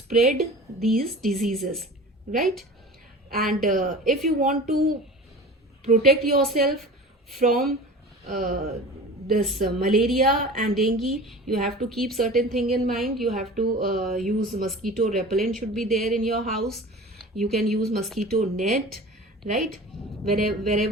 these diseases, right? And if you want to protect yourself from this malaria and dengue, you have to keep certain thing in mind. You have to use mosquito repellent, should be there in your house. You can use mosquito net, right?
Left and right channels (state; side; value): normal; both; correlation 0.38